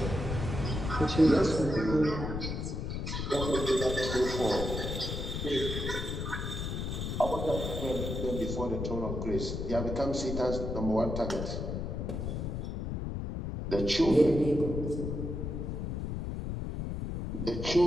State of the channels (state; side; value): noise; left; rumble, 3 dB below the sound